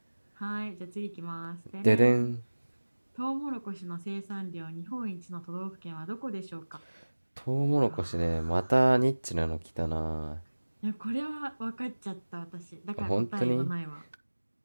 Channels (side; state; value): both; inverted; correlation -1.00